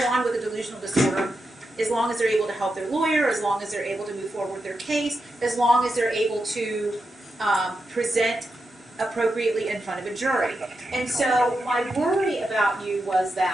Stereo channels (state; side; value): normal; both; correlation 0.87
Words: on with a delusional disorder as long as they're able to help their lawyer, as long as they're able to move forward with their case, as long as they're able to present appropriately in front of a jury. And so my worry about you was